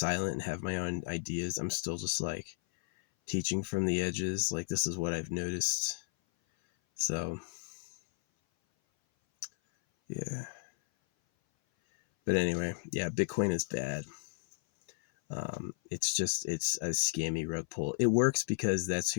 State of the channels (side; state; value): right; silent; 55 dB below the other